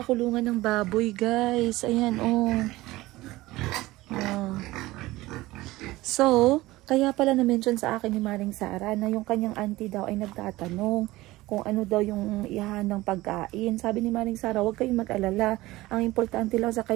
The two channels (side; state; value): left; quieter; 18.6 dB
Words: kulungan ng baboy, guys. Ayan, oh. So, kaya pala na-mention sa akin ni Maring Sara na yung kanyang auntie daw ay nagtatanong kung ano daw yung ihahandang pagkain. Sabi ni Maring Sara, huwag kayong mag-alala. Ang importante lang sa